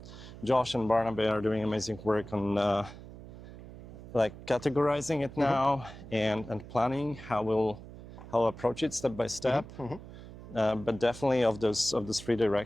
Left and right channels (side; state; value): right; noise; hum, 15 dB below the sound